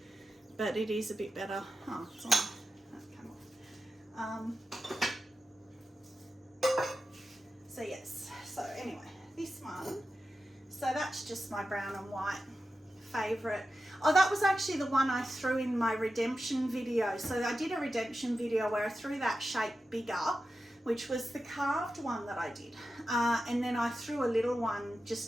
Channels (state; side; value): normal; both; correlation 0.92